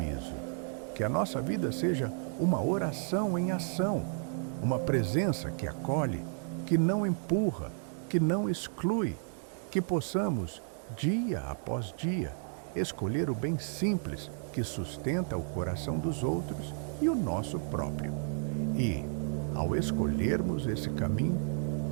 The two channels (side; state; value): left; silent; 56 dB below the other